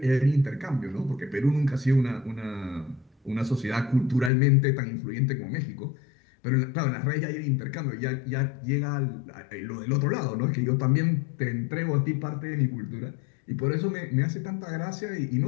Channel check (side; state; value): right; drops out; at 4.3 s